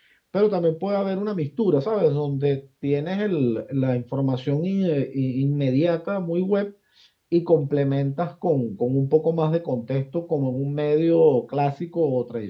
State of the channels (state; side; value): identical; both; correlation 1.00